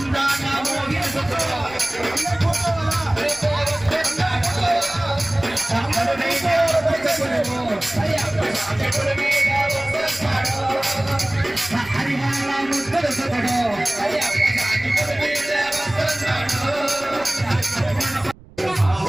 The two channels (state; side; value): noise; right; rumble, 22 dB below the sound